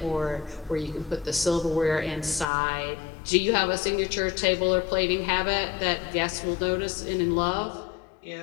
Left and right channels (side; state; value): right; drops out; at 2.5 s